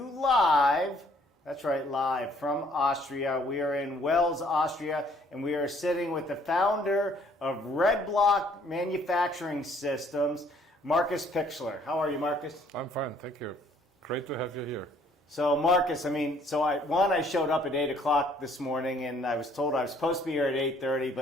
live, that's right, live from Austria. We are in Wels, Austria, and we are sitting with the founder of Red Block Manufacturing Systems, Marcus Pixler. How are you, Marcus? I'm fine, thank you. Great to have you here. So Marcus, I showed up at 8 o'clock this morning and I was told I was supposed to be here at 8:30,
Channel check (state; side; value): normal; both; correlation 0.62